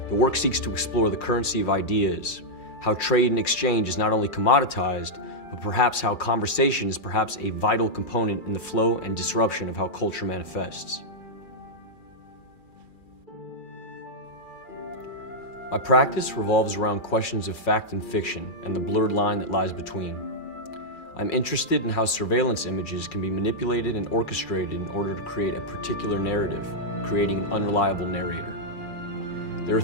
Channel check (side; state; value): right; late; 2.4 ms